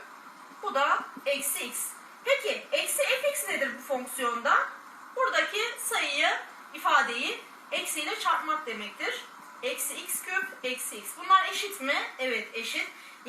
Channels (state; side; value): identical; both; correlation 1.00